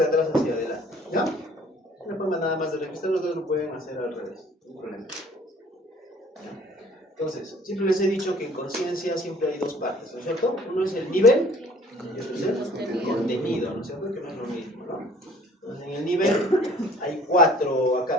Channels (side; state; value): both; normal; correlation 0.53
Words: atrás hacia adelante, ¿ya? Una forma nada más de registrar, los dos lo pueden hacer al revés, no hay problema. Entonces, siempre les he dicho que en conciencia siempre hay dos partes, ¿no es cierto? Uno es el nivel y otro es el contenido, ¿no es cierto? Que no es lo mismo, ¿no? Entonces, en el nivel hay 4